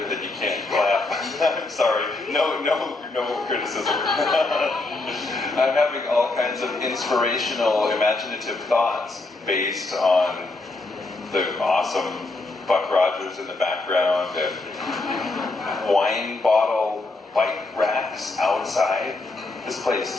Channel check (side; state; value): right; quieter; 3.2 dB